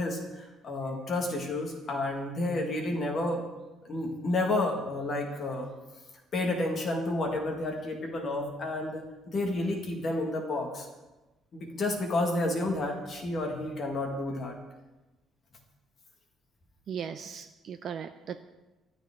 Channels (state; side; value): normal; both; correlation 0.67